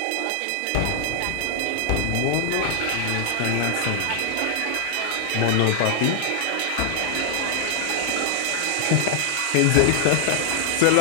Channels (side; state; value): both; different; correlation 0.00